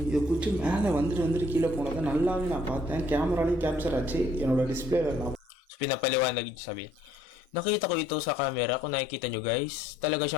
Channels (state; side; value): normal; both; correlation 0.63